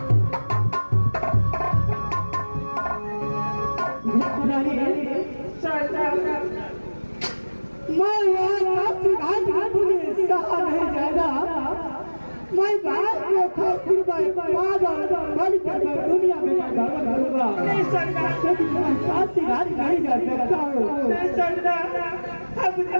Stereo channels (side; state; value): both; inverted; correlation -1.00